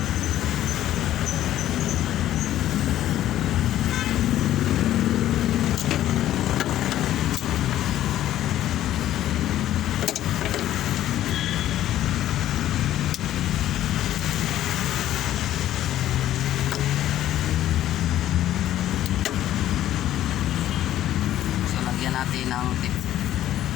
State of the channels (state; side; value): quieter; right; 12.8 dB